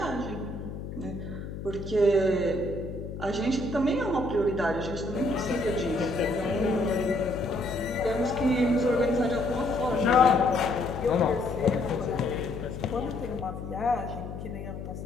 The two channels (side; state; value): left; noise; hum, 8 dB below the sound